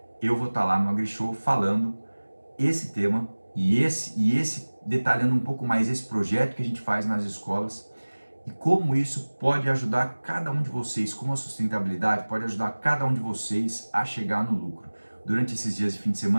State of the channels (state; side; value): inverted; both; correlation -1.00